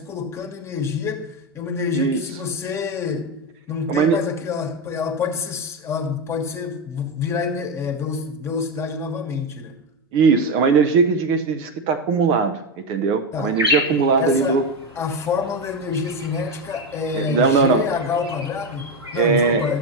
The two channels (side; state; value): both; normal; correlation 0.12